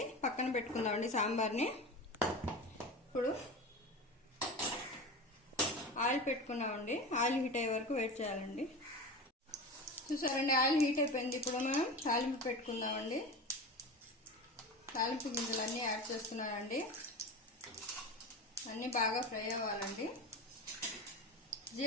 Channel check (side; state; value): both; normal; correlation 0.28